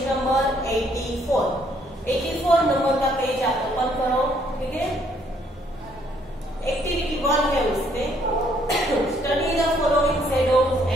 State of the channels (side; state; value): both; normal; correlation 0.67